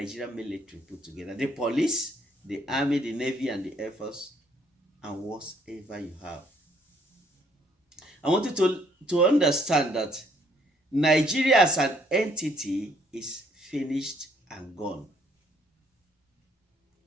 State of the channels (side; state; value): both; normal; correlation 0.66